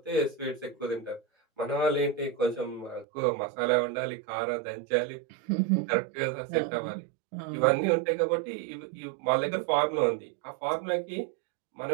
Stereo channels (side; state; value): left; drops out; at 3.1 s